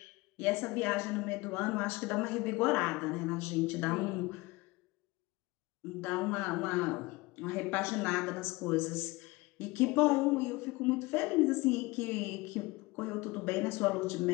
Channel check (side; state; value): right; quieter; 22.5 dB